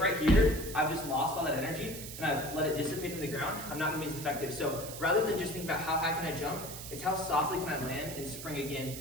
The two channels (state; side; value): noise; right; hiss, 10 dB below the sound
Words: right here, I've just lost all that energy and I've let it dissipate in the ground, I'm not gonna be as effective. So rather than just think about how high can I jump, it's how softly can I land and spring again.